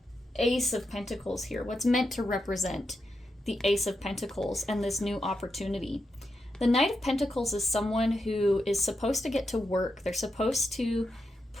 Ace of Pentacles here, what's meant to represent the Ace of Pentacles and this new opportunity. The Knight of Pentacles is someone who is supposed to get to work. They're supposed to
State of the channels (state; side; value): normal; both; correlation 0.86